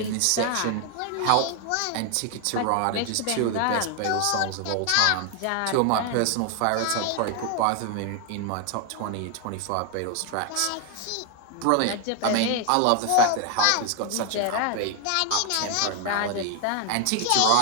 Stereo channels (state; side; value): different; both; correlation 0.00